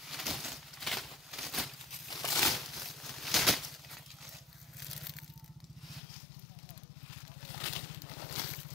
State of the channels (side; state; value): right; drops out; at 6.0 s